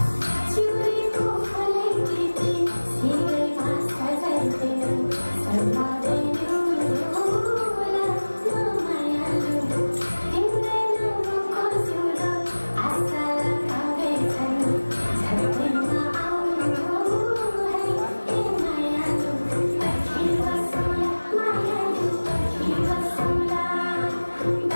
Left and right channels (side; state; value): both; inverted; correlation -1.00